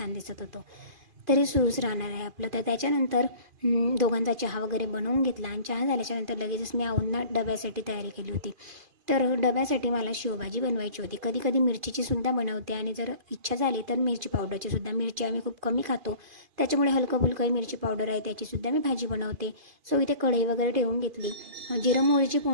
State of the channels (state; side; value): late; left; 2.5 ms